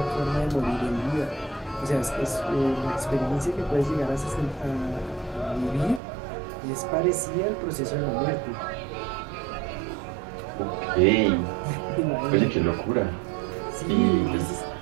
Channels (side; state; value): left; drops out; at 6.0 s